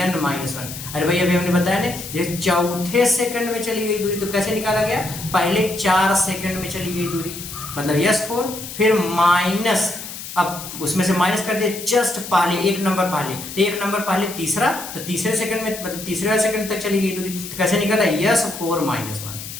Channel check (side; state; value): left; noise; hiss, 10 dB below the sound